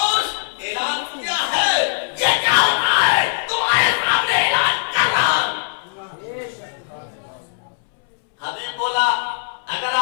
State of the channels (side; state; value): right; silent; 66 dB below the other